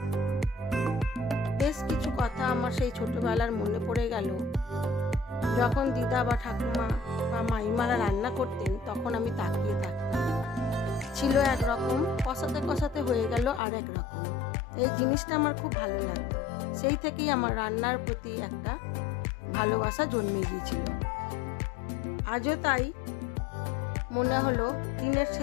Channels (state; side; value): drops out; right; at 13.6 s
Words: বেশ কিছু কথা আমার সেই ছোটবেলার মনে পড়ে গেল। যখন দিদা বা ঠাকুমা বা মাইমারা রান্না করতেন তখন আমি তাকিয়ে থাকতাম। ছিল একরকম, কষাতে কষাতে হয়ে গেল আর এক রকম। এই জিনিসটা আমার খুব ভালো লাগতো, সেই থেকেই আমার রান্নার প্রতি একটা ভালোবাসা জন্মে গিয়েছিল। আজও তাই মনে হলো দিনের